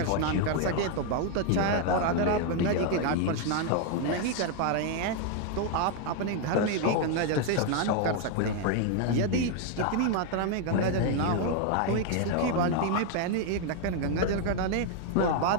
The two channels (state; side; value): different; both; correlation 0.01